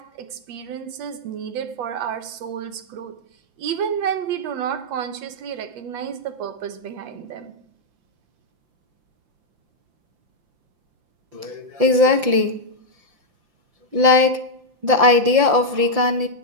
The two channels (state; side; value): late; left; 5.8 ms